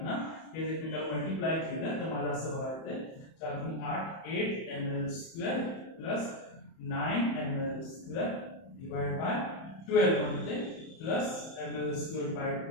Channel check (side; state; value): right; late; 31 ms